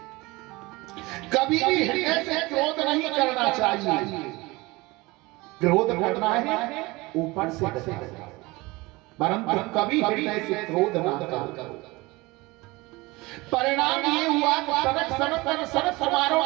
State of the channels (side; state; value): left; quieter; 22.5 dB